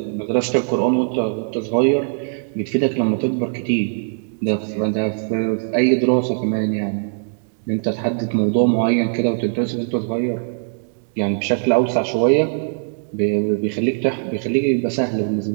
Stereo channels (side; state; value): left; silent; digital silence